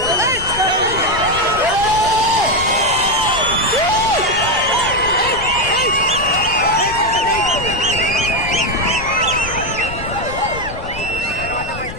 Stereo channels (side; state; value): left; noise; rumble, 11 dB below the sound